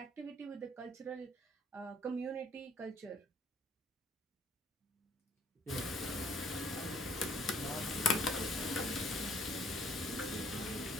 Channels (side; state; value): both; normal; correlation 0.61